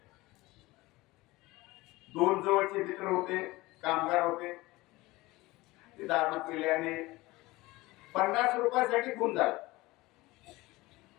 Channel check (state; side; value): quieter; right; 20.3 dB